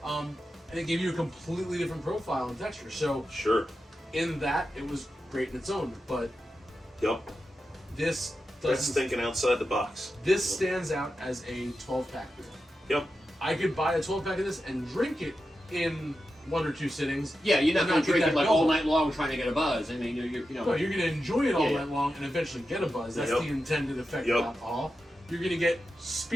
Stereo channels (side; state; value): both; normal; correlation 0.90